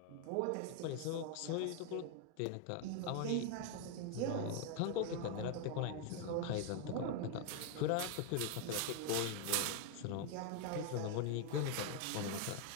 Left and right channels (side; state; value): both; different; correlation 0.00